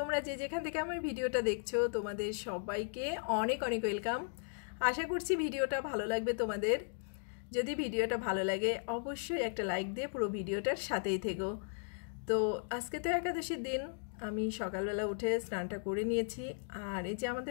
যে যেখান থেকে আমার ভিডিওটা দেখছো তোমাদের সবাইকে অনেক অনেক ওয়েলকাম। আশা করছি ভিডিওটা ভালো লাগবে তোমাদের। যদি ভিডিওটা ভালো লাগে অবশ্যই একটা লাইক দিয়ে পুরো ভিডিওটার সাথেই থেকো। তো আজকে তো একাদশীর দিন। আমি সকালবেলা উঠে স্নানটা করে নিয়েছি। আর এই যে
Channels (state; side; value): silent; right; digital silence